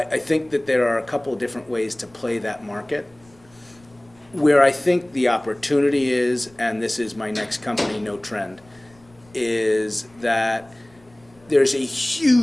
think that there are a couple of different ways to play that market. Where I think the opportunity is, and this is my next company, Note Trend, is that there's a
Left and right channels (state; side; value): noise; left; rumble, 29 dB below the sound